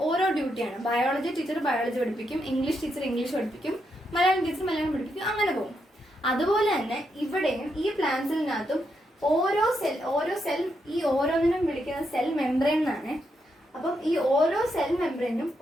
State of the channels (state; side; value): normal; both; correlation 0.81